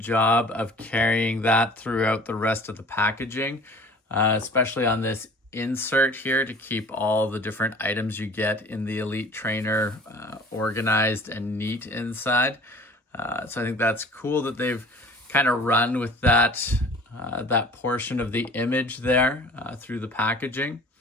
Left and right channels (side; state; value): both; normal; correlation 0.46